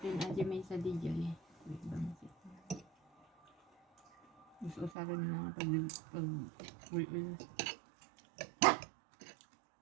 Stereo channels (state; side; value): drops out; left; at 4.9 s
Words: aja may sa DJ. Mas usaran na pag